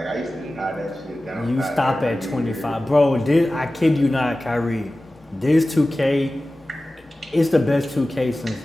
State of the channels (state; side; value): normal; both; correlation 0.96